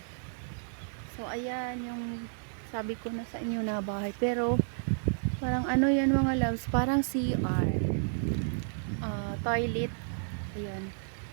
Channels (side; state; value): left; silent; 57 dB below the other